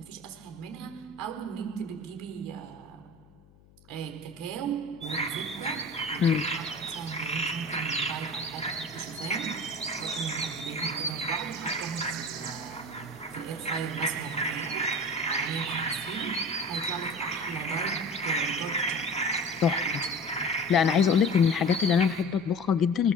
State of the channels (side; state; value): left; noise; hum, 27 dB below the sound